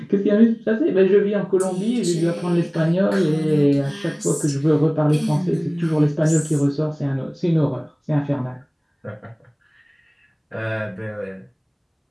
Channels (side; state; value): both; identical; correlation 1.00